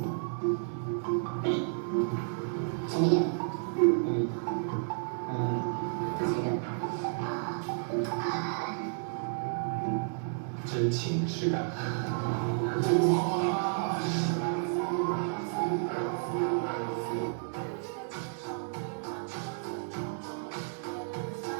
真情实感。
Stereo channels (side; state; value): left; silent; digital silence